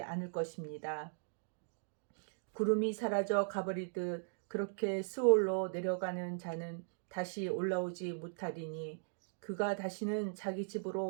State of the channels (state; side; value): silent; left; digital silence